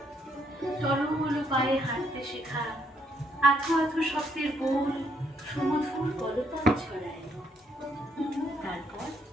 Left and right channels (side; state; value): both; normal; correlation 0.72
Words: টলমল পায়ে হাঁটতে শেখা, আথো আথো শব্দের বোল সুমধুর কলতান ছড়ায়। তারপর